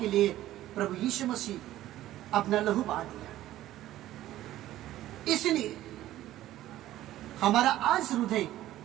लिए प्रभु यीशु मसीह अपना लहू बहा दिया। इसलिए हमारा आज हृदय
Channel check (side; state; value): left; quieter; 14.2 dB